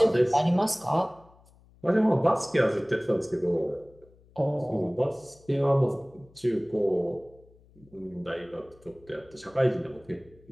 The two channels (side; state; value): left; noise; hum, 28 dB below the sound